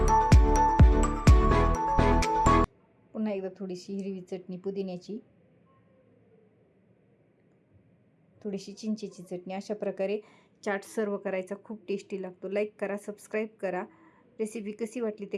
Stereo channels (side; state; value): both; identical; correlation 1.00